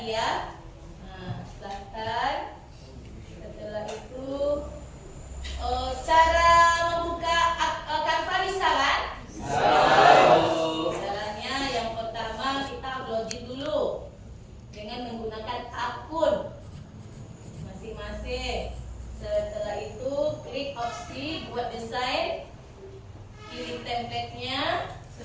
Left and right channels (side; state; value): both; identical; correlation 1.00